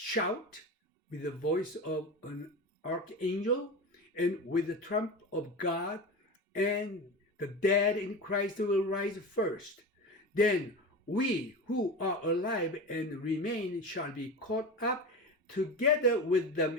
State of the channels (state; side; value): normal; both; correlation 0.27